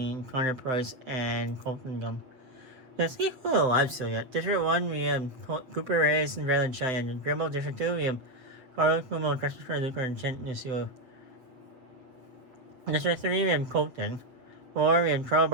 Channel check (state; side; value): late; left; 7.6 ms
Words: Connor Price, and Colton Gum. There's equal alive still yet. District 1, we have Cooper Reyes and Raylan Cheyenne. Dribble District 2, we have Carlos Cuomo, Christopher Luker, and Chent Nusio. District 3, we have Colton. 4, we have Charles